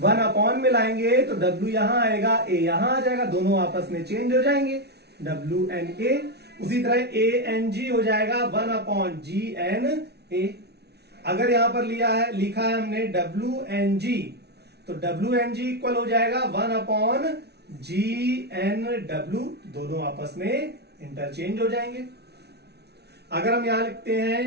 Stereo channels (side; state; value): left; late; 0.49 ms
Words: अपॉन में लाएंगे तो W यहां आएगा, A यहां आ जाएगा, दोनों आपस में चेंज हो जाएंगे, WNA। उसी तरह ANG हो जाएगा 1 अपॉन GNA। अगर यहां पर लिखा है हमने WNG, तो WNG इक्वल हो जाएगा 1 अपॉन GNW, दोनों आपस में इंटरचेंज हो जाएंगे। अगर हम यहां लिखते